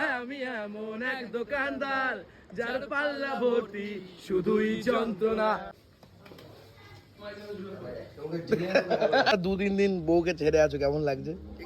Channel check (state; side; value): identical; both; correlation 1.00